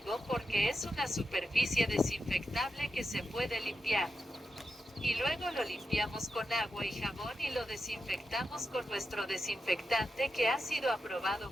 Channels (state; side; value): normal; both; correlation 0.88